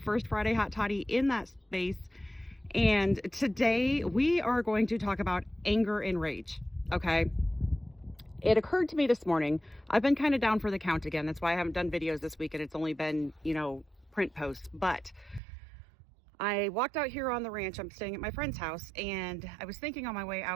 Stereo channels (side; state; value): left; drops out; at 15.4 s